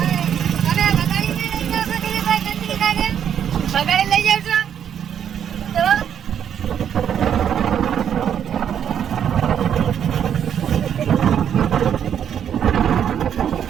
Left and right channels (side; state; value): left; quieter; 8.9 dB